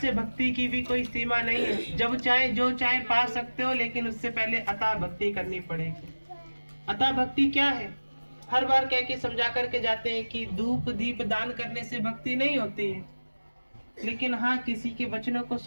भक्ति की भी कोई सीमा नहीं है। जब चाहे जो चाहे पा सकते हो, लेकिन उससे पहले अतः भक्ति करनी पड़ेगी। अतः भक्ति क्या है? हर बार कह के समझा करके जाते हैं कि धूप दीप दान करने से भक्ति नहीं होती है, लेकिन हाँ, किसी के वचनों को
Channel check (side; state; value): both; inverted; correlation -1.00